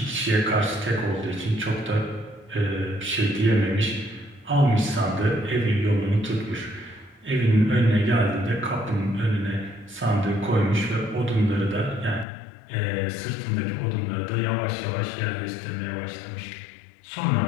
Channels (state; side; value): drops out; right; at 12.2 s